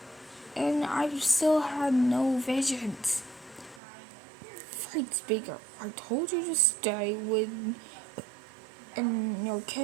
and I've still had no visions. Fatespeaker, I told you to stay in your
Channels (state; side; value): drops out; left; at 3.8 s